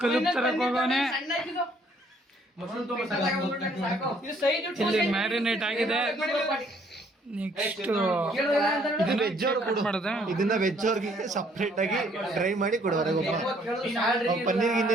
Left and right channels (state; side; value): normal; both; correlation 0.64